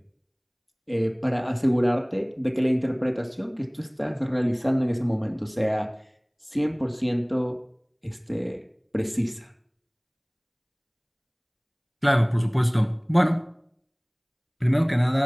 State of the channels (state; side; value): identical; both; correlation 1.00